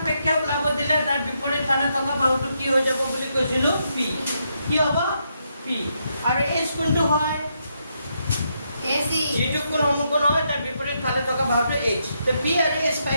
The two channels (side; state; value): both; inverted; correlation -0.79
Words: ওলাব দিলে তাৰ বিপৰীত ফালে থকা বাহুটো কি হৈ যাব বুলি কৈছিলো P কি হ'ব P আৰু H কোনটো হয় এসি যিটো কোণ সমকোণ হয় তাৰ বিপৰীত ফালে থকা বাহুটো H তো P আৰু H